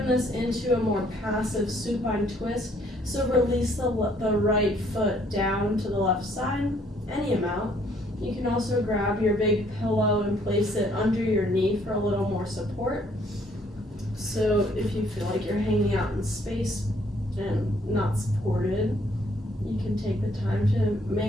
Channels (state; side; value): normal; both; correlation 0.64